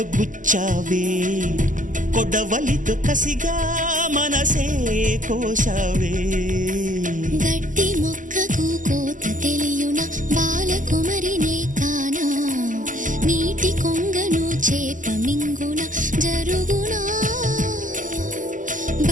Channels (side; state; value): left; late; 0.38 ms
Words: గుచ్చావే కొడవలితో కసిగా మనసే కోశావే గట్టి మొక్కకు కోత తెలియున బాలకుమరినే కానా నీటి కొంగను చేప మింగున జరుగునా